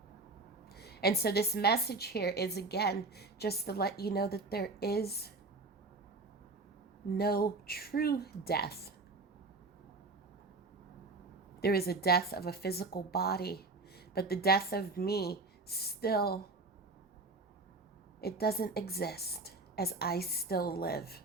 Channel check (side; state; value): left; quieter; 3.5 dB